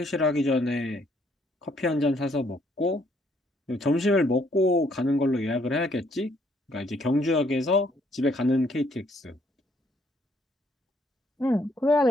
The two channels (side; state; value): both; normal; correlation 0.68